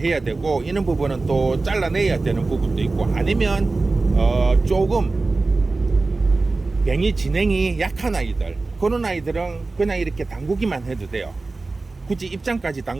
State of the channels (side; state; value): left; quieter; 3.5 dB